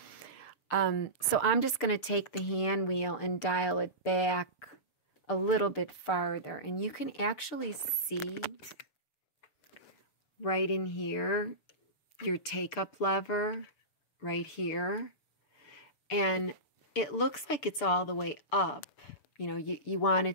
So I'm just going to take the hand wheel and dial it back a little bit farther. And you can actually see right in here your take-up lever right here. And it looks like it's all the way up. You know, you want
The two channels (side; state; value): right; late; 6.4 ms